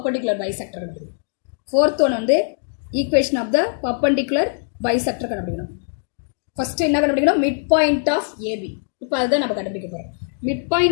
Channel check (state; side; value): silent; right; digital silence